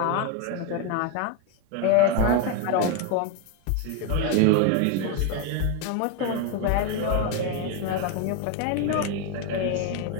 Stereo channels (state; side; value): different; both; correlation 0.02